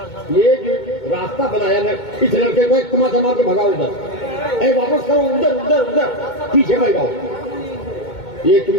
یہ جو راستہ بنایا نا، اس لڑکے کو ایک تما تما کے بھگاؤ ادھر، اے واپس کرو ادھر ادھر ادھر، پیچھے بھگاؤ. یہ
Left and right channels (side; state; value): right; late; 2.2 ms